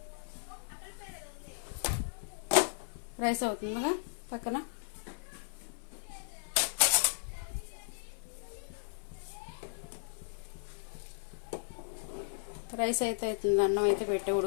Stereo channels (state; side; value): silent; right; 54 dB below the other